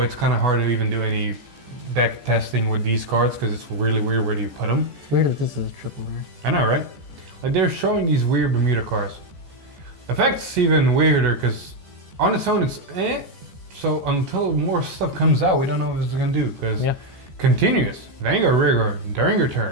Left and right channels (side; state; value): left; late; 14 ms